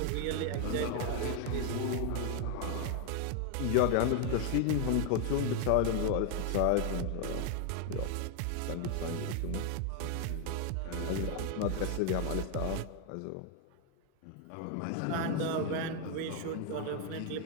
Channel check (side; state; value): both; different; correlation 0.00